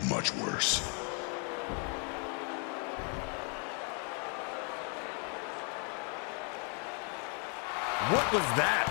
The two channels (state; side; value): quieter; right; 38.4 dB